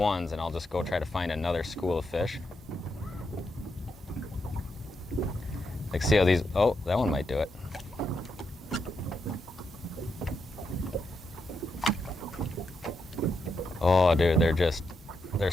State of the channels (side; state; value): both; normal; correlation 0.83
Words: and I'll just go try to find another school of fish. Like see how these, oh, that one might do it. Oh dude, they're